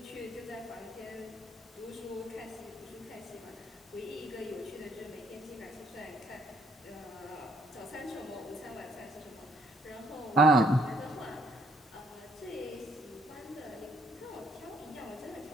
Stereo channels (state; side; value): normal; both; correlation 0.68